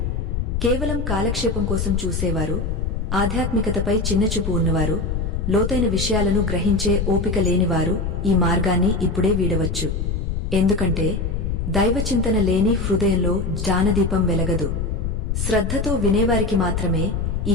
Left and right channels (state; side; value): noise; left; rumble, 1 dB below the sound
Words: కేవలం కాలక్షేపం కోసం చూసేవారు, ఆధ్యాత్మికతపై చిన్నచూపు ఉన్నవారు, లోతైన విషయాలను గ్రహించే ఓపిక లేనివారు ఈ మార్గాన్ని ఇప్పుడే వీడవచ్చు. ఎందుకంటే దైవచింతన లేని హృదయంలో జ్ఞానదీపం వెలగదు. శ్రద్ధతో వినేవారికి మాత్రమే